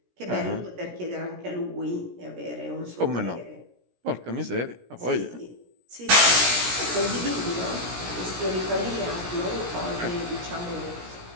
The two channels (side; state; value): left; late; 17 ms